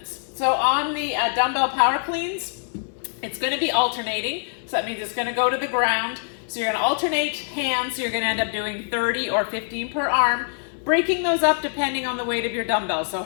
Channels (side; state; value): right; silent; 63 dB below the other